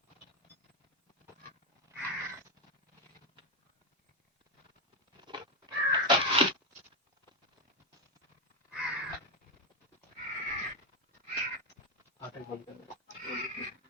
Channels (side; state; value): both; normal; correlation 0.06